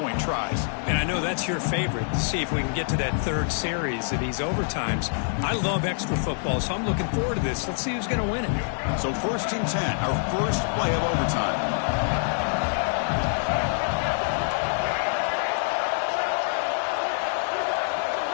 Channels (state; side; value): silent; right; digital silence